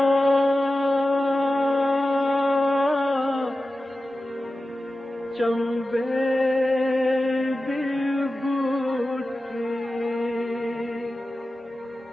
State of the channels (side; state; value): both; normal; correlation 0.94